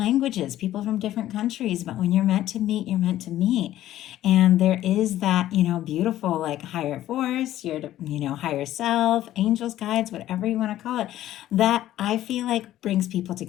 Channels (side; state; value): right; quieter; 13.5 dB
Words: people from different countries, but when you're meant to meet, you're meant to meet. And there is that, beautiful higher force, your, higher self, angels, guides, whatever you want to call it, that I feel like brings people